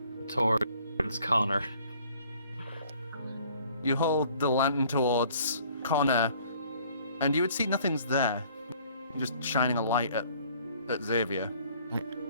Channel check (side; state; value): both; inverted; correlation -0.57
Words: towards Connor. You hold the lantern towards Connor, and you would see nothing's there. You're just shining a light at Xavier.